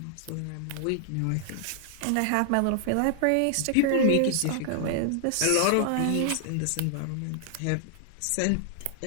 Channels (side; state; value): both; different; correlation 0.00